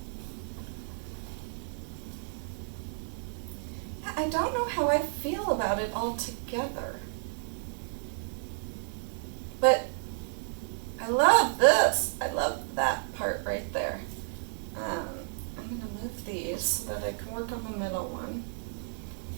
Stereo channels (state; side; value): silent; left; 57 dB below the other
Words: I don't know how I feel about it all together. But I love this. I love that part right there. I'm going to move these so that I can work on the middle one.